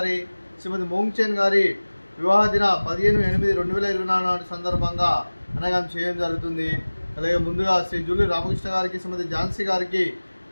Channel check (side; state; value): both; inverted; correlation -1.00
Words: శ్రీమతి మోంగ్చెన్ గారి వివాహ దిన 15/8/2024 సందర్భంగా అనగా చేయడం జరుగుతుంది. అలాగే ముందుగా శ్రీ జూలూరి రామకృష్ణ గారికి, శ్రీమతి ఝాన్సీ గారికి